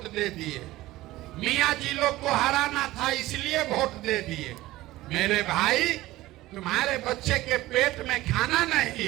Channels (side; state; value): left; quieter; 17.2 dB